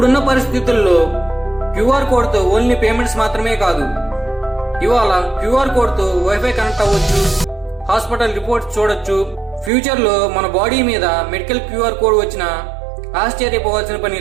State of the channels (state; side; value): drops out; left; at 9.7 s